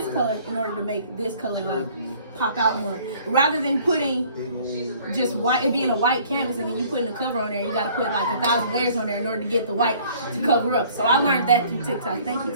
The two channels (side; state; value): both; inverted; correlation -0.55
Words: color in order to make this color like pop out more. Rather than putting just white, it being a white canvas and then you putting the cover on there, you gotta put like 1,000 layers on there in order to get the white to cover up. So I learned that through TikTok. Thank you,